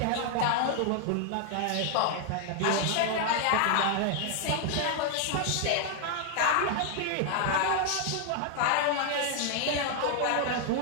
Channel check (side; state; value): both; different; correlation 0.00